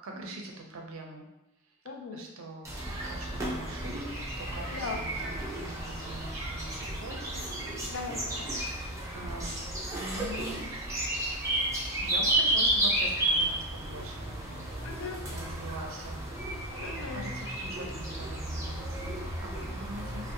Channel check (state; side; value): normal; both; correlation 0.13